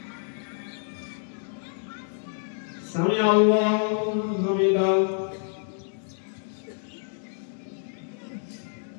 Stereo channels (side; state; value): right; silent; 60 dB below the other